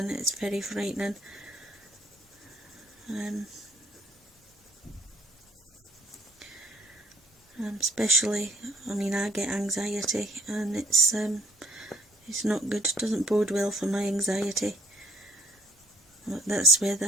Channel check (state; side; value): normal; both; correlation 0.60